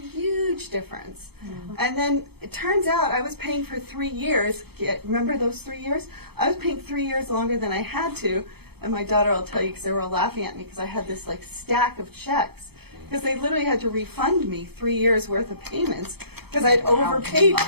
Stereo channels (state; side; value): late; left; 0.97 ms